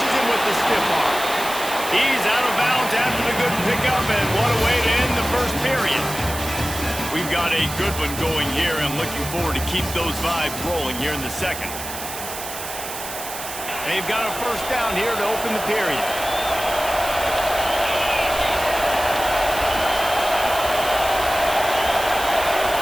him with the stiff arm. He's out of bounds after the good pickup, and what a way to end the first period. We've got a good one going here. I'm looking forward to keep those vibes rolling here in the second. They've got a 1st down here to open the period.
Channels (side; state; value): right; noise; hiss, 9 dB below the sound